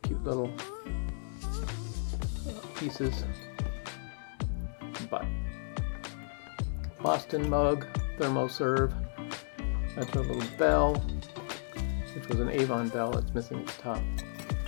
cute little pieces. But Boston mug, thermoserve. That's our little bell, which was an Avon bell. It's missing its top.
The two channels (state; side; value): silent; right; digital silence